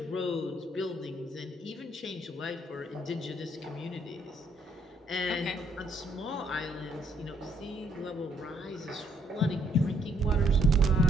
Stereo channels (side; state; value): both; normal; correlation 0.69